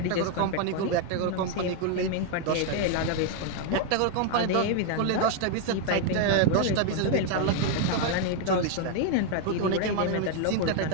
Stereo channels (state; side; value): different; both; correlation 0.00